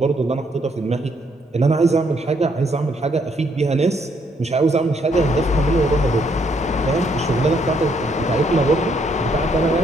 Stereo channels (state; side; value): normal; both; correlation 0.71